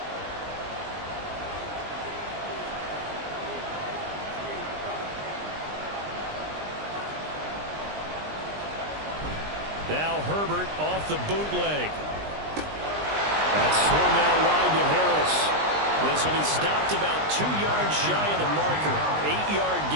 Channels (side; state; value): left; late; 20 ms